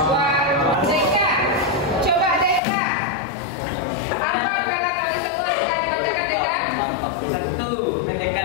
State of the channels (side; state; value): right; drops out; at 2.6 s